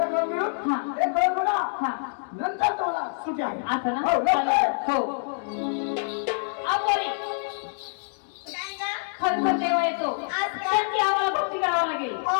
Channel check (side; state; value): right; silent; digital silence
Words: करून घेऊ. हा. एक करून बघा. हा नंतर तुम्हाला सुट्टी आहे. असं ना. हो, लवकर. हो आपोरी काय ग? खरखर देवा येतो आज काय? त्यांची आम्हाला भक्ती करावं लागेल. हो